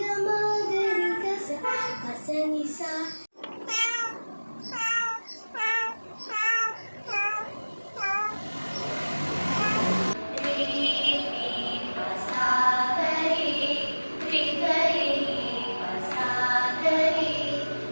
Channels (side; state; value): both; inverted; correlation -1.00